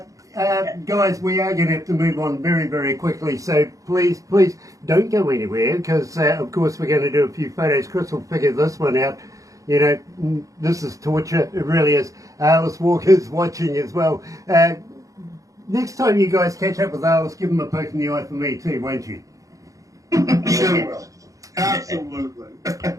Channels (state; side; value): late; left; 0.16 ms